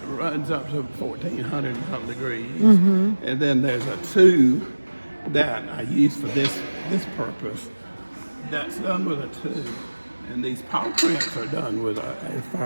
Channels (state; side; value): inverted; both; correlation -1.00